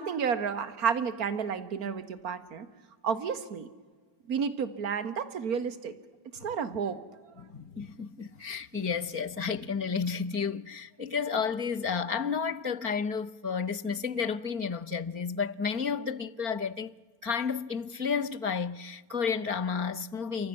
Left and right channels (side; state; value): left; late; 4.4 ms